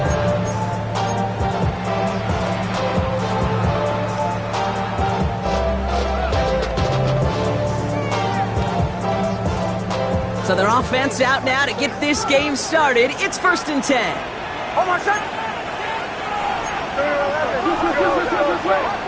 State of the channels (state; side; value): identical; both; correlation 1.00